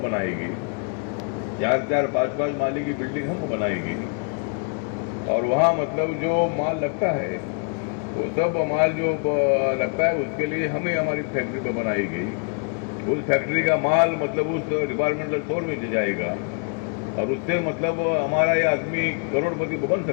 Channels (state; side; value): quieter; right; 39.5 dB